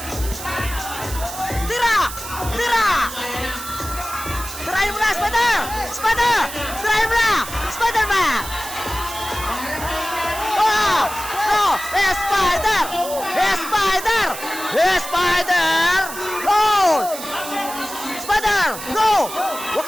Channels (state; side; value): noise; right; hiss, 10 dB below the sound